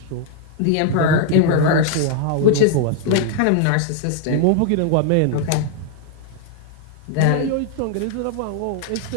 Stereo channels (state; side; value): different; both; correlation 0.00